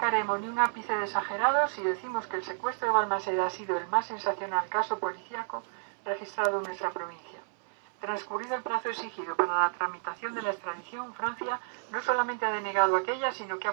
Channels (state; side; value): silent; left; 57 dB below the other